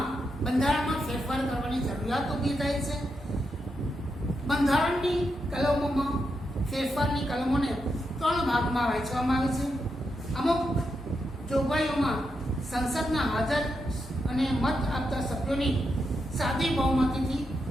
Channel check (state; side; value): normal; both; correlation 0.84